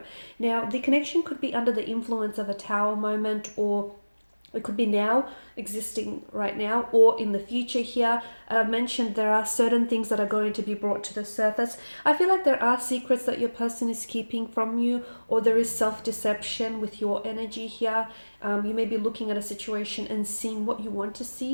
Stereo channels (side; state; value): both; inverted; correlation -1.00